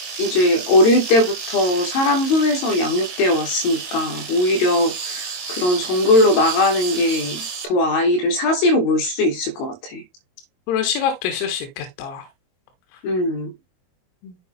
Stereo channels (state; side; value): late; right; 22 ms